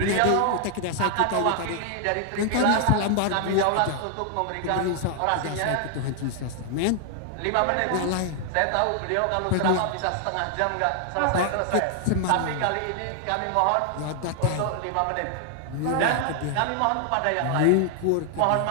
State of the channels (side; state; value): both; different; correlation 0.00